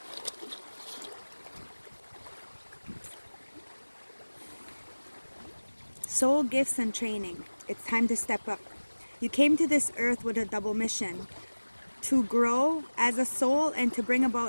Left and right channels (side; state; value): both; inverted; correlation -1.00